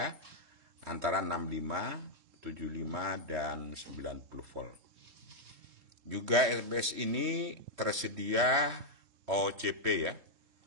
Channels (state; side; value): late; left; 3.1 ms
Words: antara 65, 75, dan 90 volt. Juga SMPS ini tersedia OCP ya.